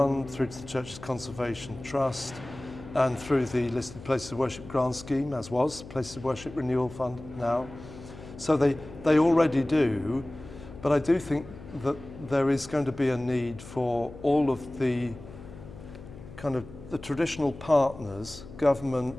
through to the Church's Conservation Trust, and through the listed Places of Worship grant scheme, as was Places of Worship Renewal Fund now. So they already do, but I do think that there is going to be a need for all of the kind of the traditional partners,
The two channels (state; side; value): noise; left; hum, 16 dB below the sound